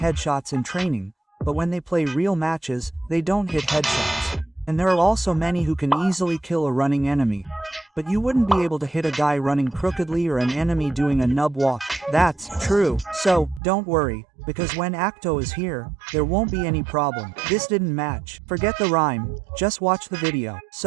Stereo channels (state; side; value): drops out; left; at 13.6 s